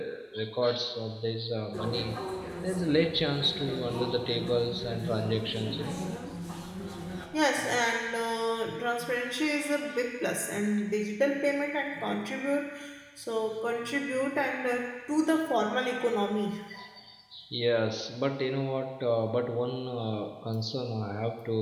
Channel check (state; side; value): identical; both; correlation 1.00